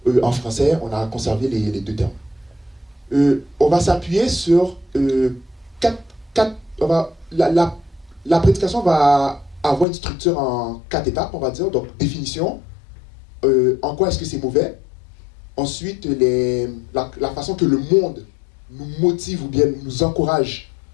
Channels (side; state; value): right; drops out; at 9.9 s